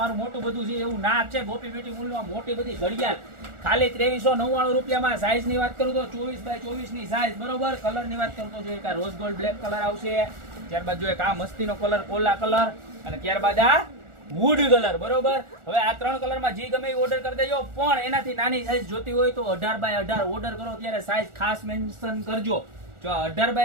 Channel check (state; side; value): late; left; 1.4 ms